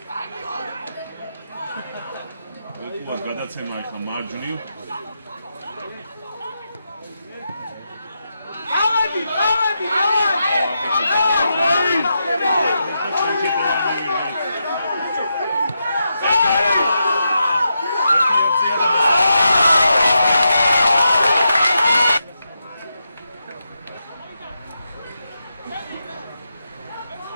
ვეკუას გადაცემა ახლა მარჯვნივ. ავადი!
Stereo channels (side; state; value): both; inverted; correlation -0.85